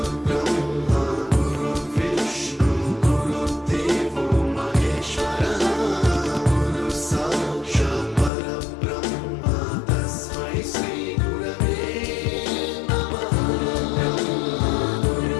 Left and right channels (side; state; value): right; drops out; at 8.3 s